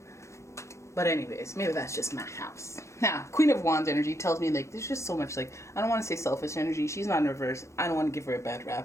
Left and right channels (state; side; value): late; right; 0.14 ms